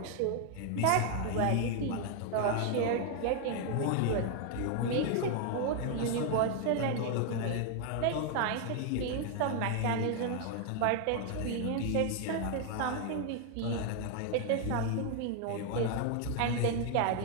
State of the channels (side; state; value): both; different; correlation 0.00